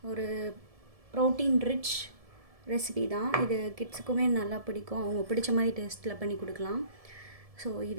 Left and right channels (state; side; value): late; left; 1.7 ms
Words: ஒரு ப்ரோட்டீன் ரிச் ரெசிபி தான். இது கிட்ஸுக்குமே நல்லா பிடிக்கும். அவங்க பிடிச்ச மாதிரி டேஸ்ட்டில் பண்ணி கொடுக்கலாம். ஸோ